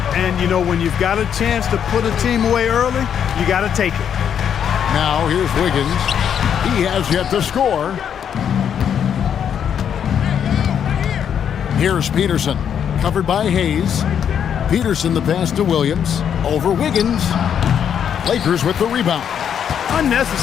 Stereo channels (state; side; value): quieter; right; 8.5 dB